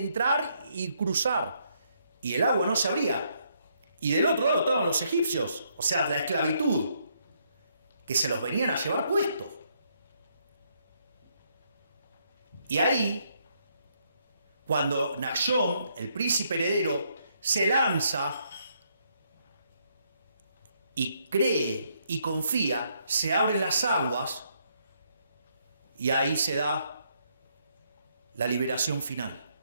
y cruzar. Y el agua no se abría. Y del otro lado estaban los egipcios, o sea, la esclavitud, que se los venían a llevar puestos. Y ahí, cuando Nachshon, el príncipe heredero, se lanza y cree y confía, se abren las aguas y ahí se da la liberación final.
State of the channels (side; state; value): both; inverted; correlation -0.73